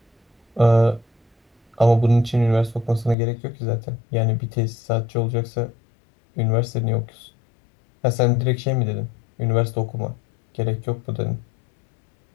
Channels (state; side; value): drops out; right; at 3.2 s